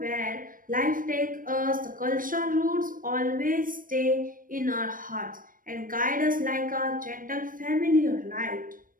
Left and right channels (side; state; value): left; late; 0.40 ms